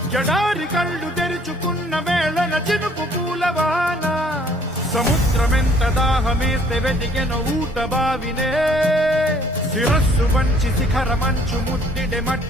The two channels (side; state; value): both; normal; correlation 0.60